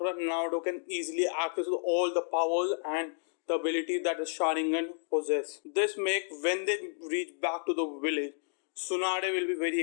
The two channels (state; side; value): silent; right; 57 dB below the other